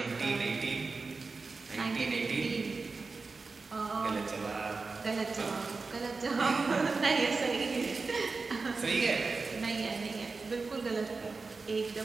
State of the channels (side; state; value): left; quieter; 4.1 dB